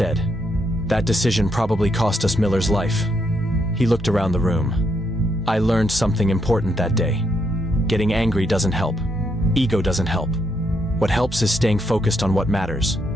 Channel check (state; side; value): normal; both; correlation 0.77